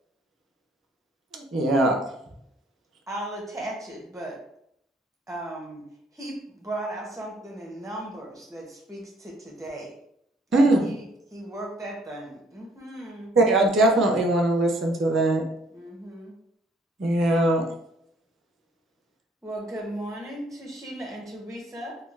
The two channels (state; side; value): normal; both; correlation 0.63